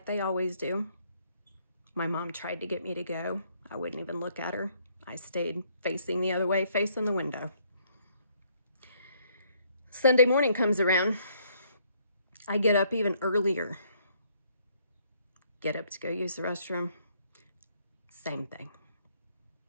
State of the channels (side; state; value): both; inverted; correlation -0.67